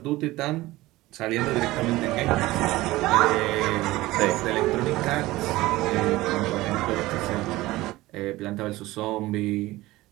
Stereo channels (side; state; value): left; quieter; 18.5 dB